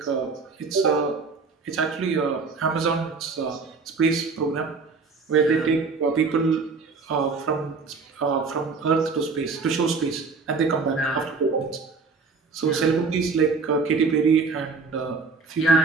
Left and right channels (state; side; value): quieter; left; 4.5 dB